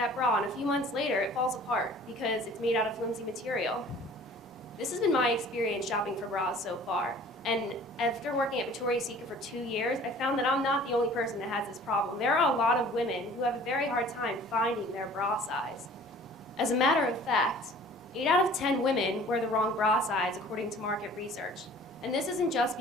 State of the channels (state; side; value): normal; both; correlation 0.49